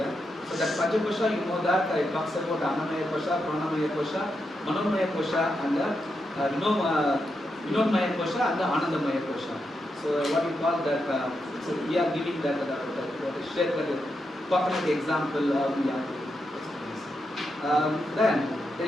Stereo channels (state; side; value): normal; both; correlation 0.85